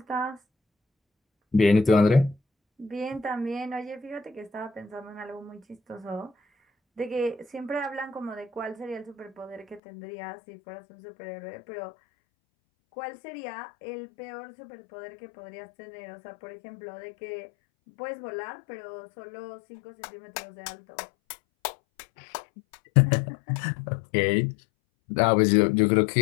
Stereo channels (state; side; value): drops out; right; at 9.8 s